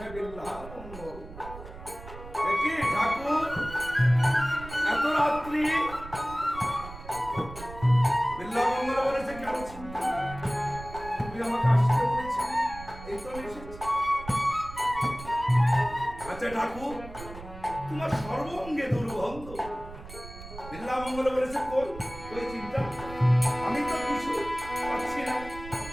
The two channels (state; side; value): noise; right; rumble, 14 dB below the sound